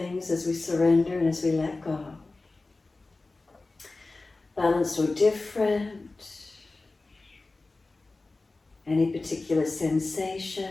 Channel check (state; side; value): quieter; right; 3.3 dB